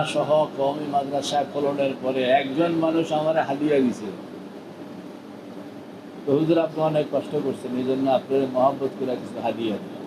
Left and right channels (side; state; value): both; identical; correlation 1.00